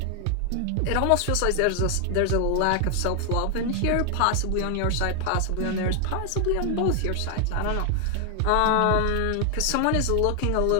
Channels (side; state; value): both; different; correlation 0.00